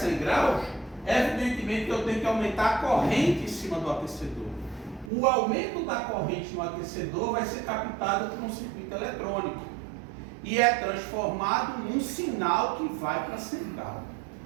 graus, evidentemente que eu tenho que aumentar a corrente em cima do aquecedor. O aumento da corrente no aquecedor vai ser captado por um circuito eletrônico e é transformado num sinal que vai para a central.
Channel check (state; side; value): drops out; left; at 5.1 s